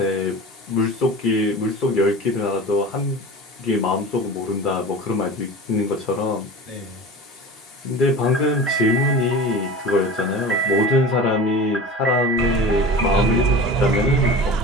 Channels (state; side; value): normal; both; correlation 0.34